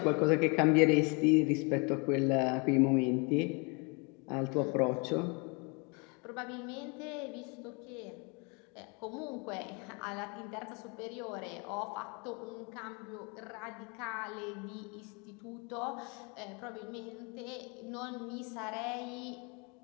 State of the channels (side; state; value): right; quieter; 32.0 dB